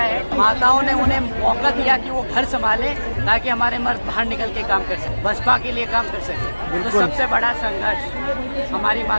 माताओं ने उन्हें मौका दिया कि वो घर संभाले ताकि हमारे मर्द बाहर निकल के काम कर सके, बसपा के लिए काम कर सके। तो सबसे बड़ा संघर्ष हमारी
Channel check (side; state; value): both; inverted; correlation -1.00